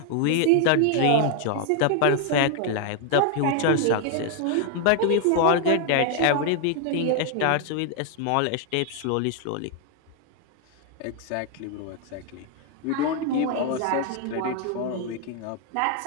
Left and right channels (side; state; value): both; different; correlation 0.00